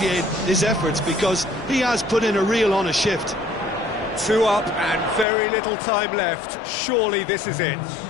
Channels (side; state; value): right; drops out; at 5.2 s